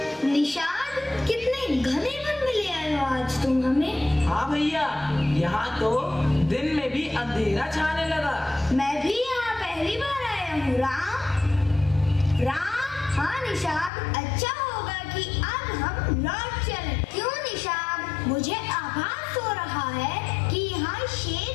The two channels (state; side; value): drops out; right; at 13.9 s